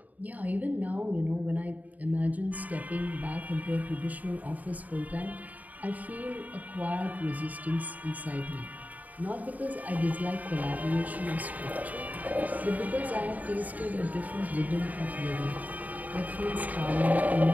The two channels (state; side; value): late; left; 0.076 ms